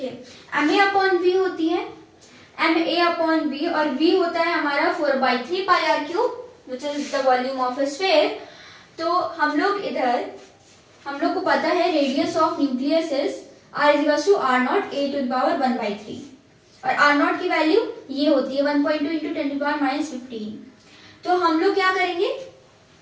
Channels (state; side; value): identical; both; correlation 1.00